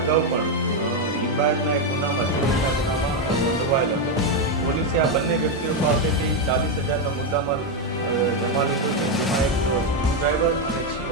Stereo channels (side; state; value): both; normal; correlation 0.05